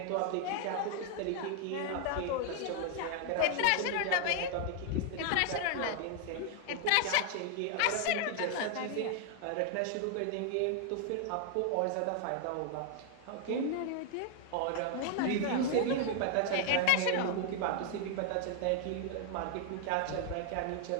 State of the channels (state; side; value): different; both; correlation 0.00